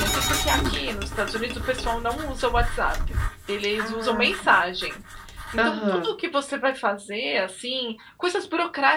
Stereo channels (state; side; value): identical; both; correlation 1.00